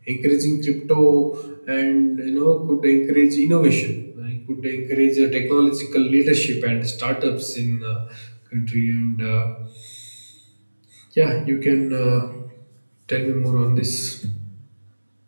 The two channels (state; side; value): inverted; both; correlation -1.00